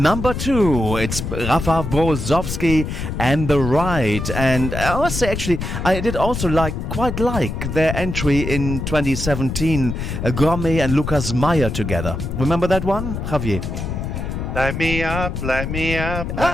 2. It's Rafael Brozowski and The Ride. And I must say, actually, I did also quite like their entry in 2017, Gourmet and Lucas Meyer together. Remember that one, Javier? Light me up, light me up,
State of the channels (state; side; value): noise; left; rumble, 4 dB below the sound